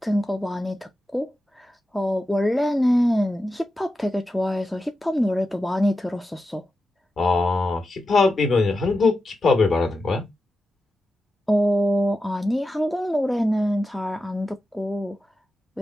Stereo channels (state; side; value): normal; both; correlation 0.91